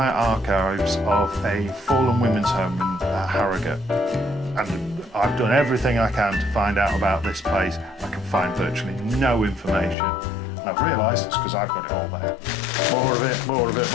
archives of a fallen women's home in Harrogate. And I've done everything I can to find out about this place. I can find virtually no information. And I've realised it's because I've got it all there. More of it, more of it,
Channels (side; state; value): right; drops out; at 10.0 s